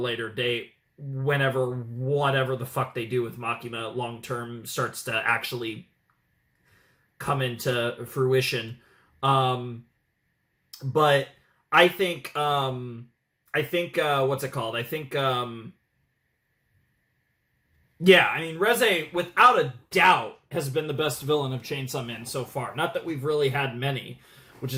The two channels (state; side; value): identical; both; correlation 1.00